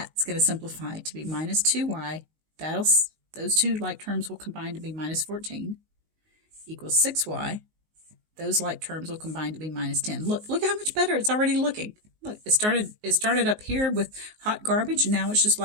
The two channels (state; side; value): late; left; 19 ms